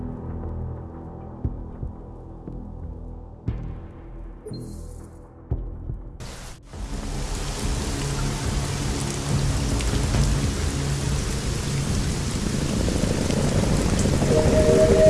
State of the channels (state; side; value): identical; both; correlation 1.00